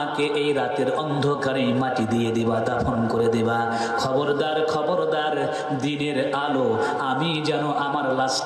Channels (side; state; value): both; identical; correlation 1.00